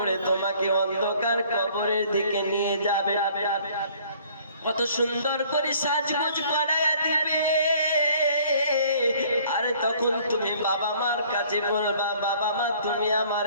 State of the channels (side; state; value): both; inverted; correlation -0.56